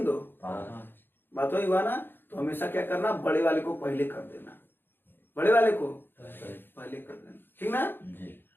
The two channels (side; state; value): right; late; 0.10 ms